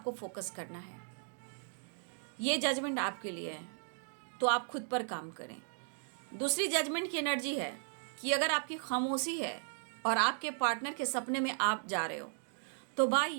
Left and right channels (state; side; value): silent; left; 54 dB below the other